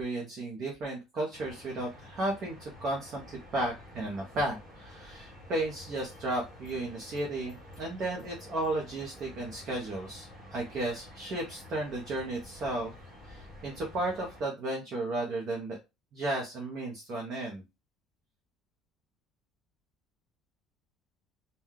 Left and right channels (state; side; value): normal; both; correlation 0.57